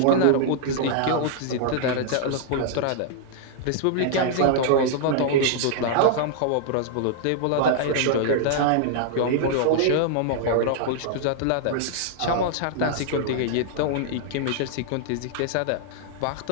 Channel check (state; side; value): different; both; correlation -0.01